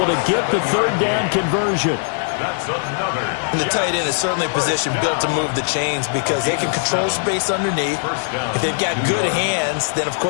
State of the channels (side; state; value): right; silent; digital silence